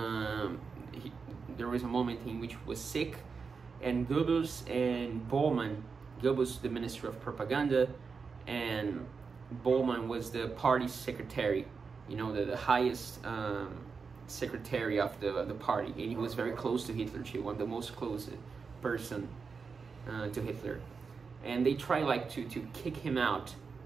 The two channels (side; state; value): left; quieter; 5.2 dB